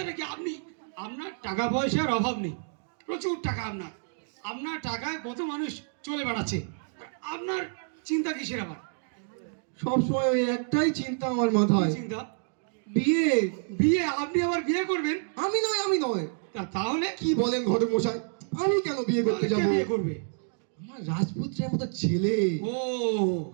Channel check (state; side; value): silent; left; 59 dB below the other